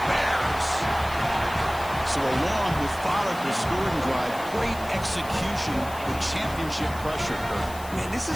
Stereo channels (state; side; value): noise; left; hiss, 17 dB below the sound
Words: Bears. So along with followed the scoring drive, great execution execution with championship pressure. Man, this is